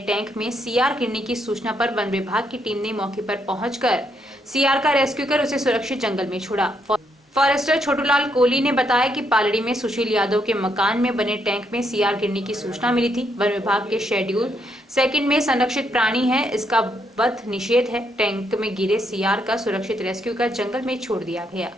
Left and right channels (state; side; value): normal; both; correlation 0.76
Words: टैंक में सीआर गिरने की सूचना पर वन विभाग की टीम ने मौके पर पहुंचकर सीआर का रेस्क्यू कर उसे सुरक्षित जंगल में छोड़ा। फॉरेस्टर छोटूलाल कोहली ने बताया कि पालड़ी में सुशील यादव के मकान में बने टैंक में सीआर गिरने की सूचना मिली थी। वन विभाग के शेड्यूल 2 में संरक्षित प्राणी है, इसका वध निषेध है। टैंक में गिरे सीआर का सुरक्षित रेस्क्यू कर जंगल में छोड़ दिया गया।